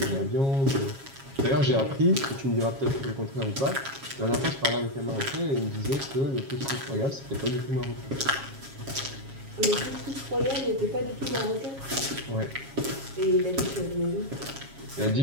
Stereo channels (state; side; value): late; left; 7.3 ms